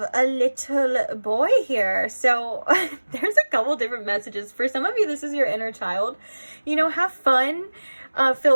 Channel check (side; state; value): both; inverted; correlation -1.00